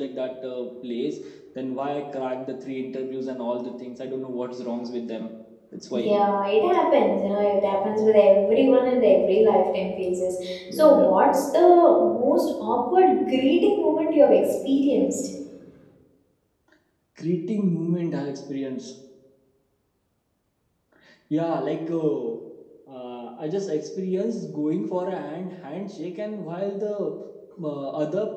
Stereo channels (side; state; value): both; identical; correlation 1.00